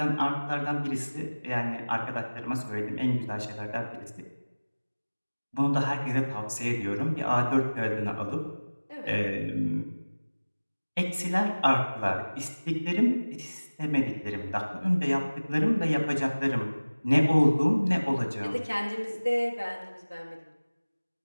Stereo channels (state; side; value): inverted; both; correlation -1.00